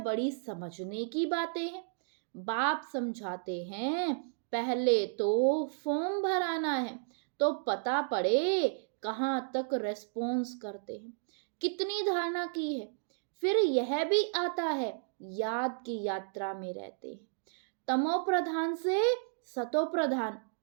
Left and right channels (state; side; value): silent; left; digital silence